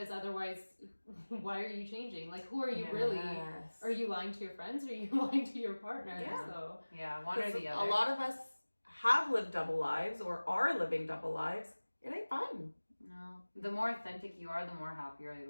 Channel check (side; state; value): both; inverted; correlation -1.00